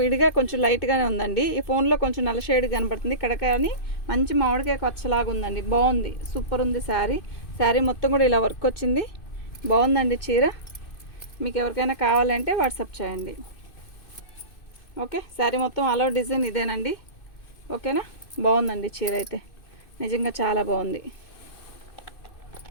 విడిగా కొంచెం లైట్గానే ఉందండి. ఈ ఫోన్లో కొంచెం నల్ల షేడ్ కనపడుతుంది. ఇక్కడ కానీ మంచి మామిడికాయ పచ్చలాగా ఉందండి. బాగుంది, సూపర్ ఉంది శారీ. శారీ మొత్తం కూడా ఇలా వర్క్ వచ్చింది. బాగుందండి చీర. మీకు ఎవరికైనా కావాలంటే వాట్సాప్ చేయండి. ఓకే, శారీ మొత్తం ఆల్ ఓవర్ డిజైన్ ఇదేనండి. ఓకేనా, బాగుందండి చీర అయితే, నిజంగా చాలా బాగుంది.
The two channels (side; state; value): right; late; 2.6 ms